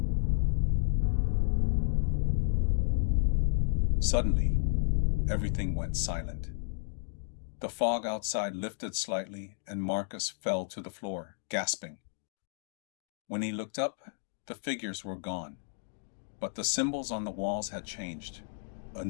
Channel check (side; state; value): right; silent; digital silence